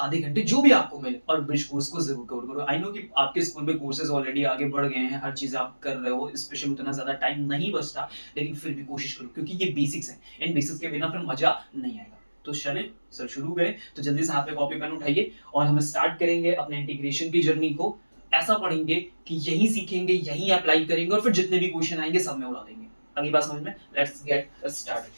आधे घंटे, जो भी आपको मिले, और ब्रिज कोर्स को जरूर कवर करो। आई नो कि आपके स्कूल में कोर्सेज ऑलरेडी आगे बढ़ गए हैं, हर चीज आप कर रहे हो, स्पेशली उतना ज्यादा टाइम नहीं बचता, लेकिन फिर भी कोशिश करो, क्योंकि ये बेसिक्स हैं। इन बेसिक्स के बिना फिर मजा नहीं आएगा। तो चले सर शुरू करें। तो जल्दी से हाथ में कॉपी पेन उठाइए और हम स्टार्ट करेंगे अपने इंटीग्रेशन की जर्नी को। ऐसा पढ़ेंगे कि यही सीखेंगे, यही अप्लाई करेंगे, और फिर जितने भी क्वेश्चन आएंगे सब में उड़ा देंगे। अगली बात समझ में। Let's get started.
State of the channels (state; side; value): inverted; both; correlation -1.00